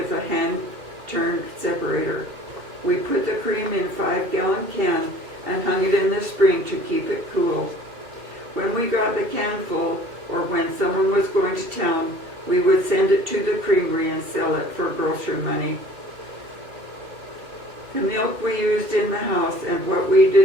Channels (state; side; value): late; left; 2.7 ms